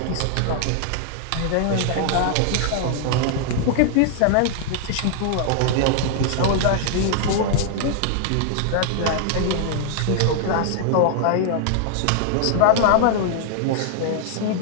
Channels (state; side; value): different; both; correlation -0.01